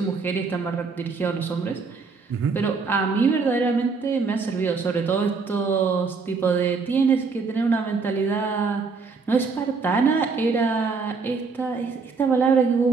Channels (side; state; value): left; quieter; 4.7 dB